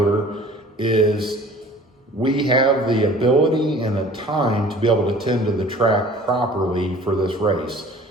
is we have the ability and the time to be able to tend to the track properly for this race.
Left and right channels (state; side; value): normal; both; correlation 0.48